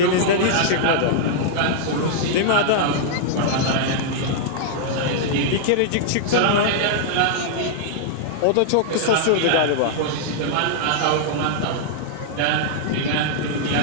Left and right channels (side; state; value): both; different; correlation -0.01